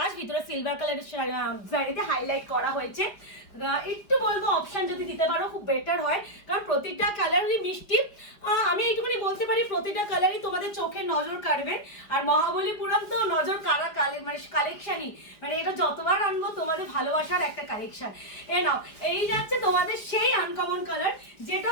ভিতরে সিলভার কালারের জারিতে হাইলাইট করা হয়েছে। একটু বলবো অপশন যদি দিতে পারো খুব বেটার হয়, কারণ প্রতিটা কালারই মিষ্টি। আমি এইটুকুনি বলতে পারি প্রতিটা কালারই তোমাদের চোখে নজর কাড়বে। আর মহাবলীপুরাম তো নজর কাড়া মানে কালেকশনই, মানে এটা যতবার আনবো তোমাদের ভালোবাসার একটা কালেকশন। এ নাও, এই যাচ্ছে তোমাদের সেই আনকমন কালার যেটা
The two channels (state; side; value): late; right; 4.8 ms